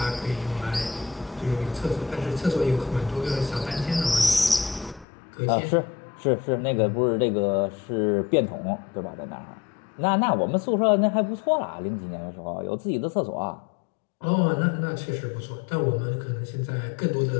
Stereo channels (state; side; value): drops out; right; at 5.1 s